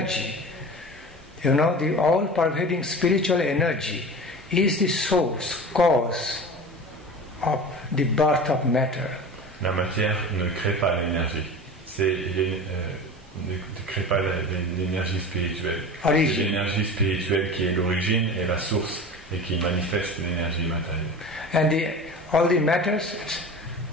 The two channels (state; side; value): normal; both; correlation 0.34